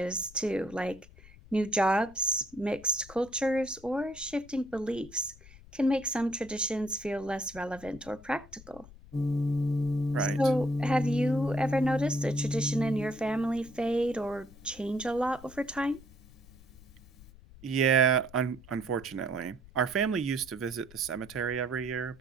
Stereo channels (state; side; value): noise; left; rumble, 21 dB below the sound